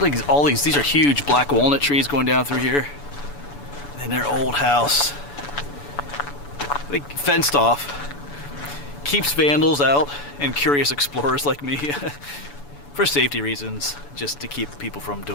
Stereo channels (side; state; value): right; late; 7.0 ms